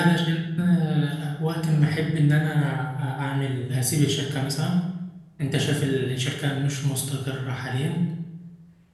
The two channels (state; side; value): identical; both; correlation 1.00